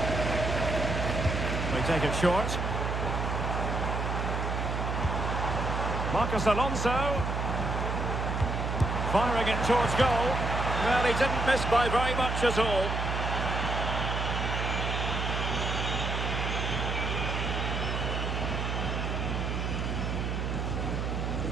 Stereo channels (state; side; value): noise; right; hum, 1 dB below the sound